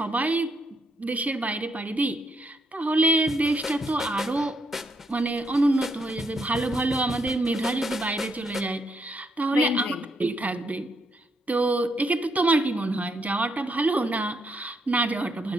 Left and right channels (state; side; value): normal; both; correlation 0.76